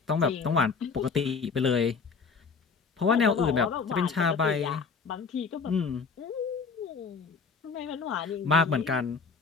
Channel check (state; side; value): quieter; right; 5.2 dB